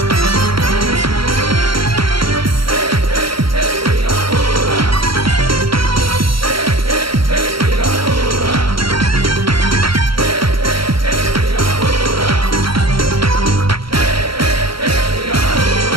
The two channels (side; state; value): left; late; 0.74 ms